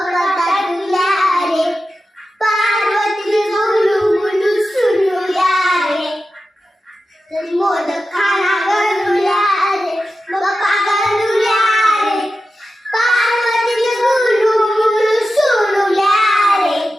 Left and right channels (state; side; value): normal; both; correlation 0.92